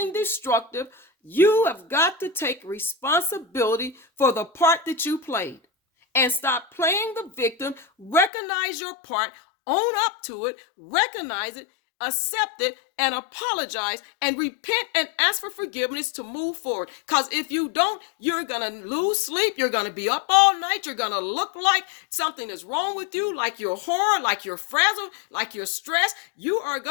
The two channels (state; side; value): drops out; right; at 8.3 s